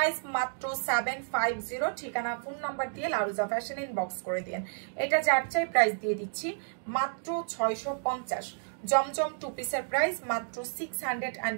মাত্র 750, ঠিকানা ফোন নাম্বার দিয়ে লারুজা ফ্যাশন ইনবক্স করে দিন। এটা যার চাই প্রাইস দিয়ে দিচ্ছি মাত্র 650। জমজম টু পিসের প্রাইস মাত্র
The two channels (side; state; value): left; silent; digital silence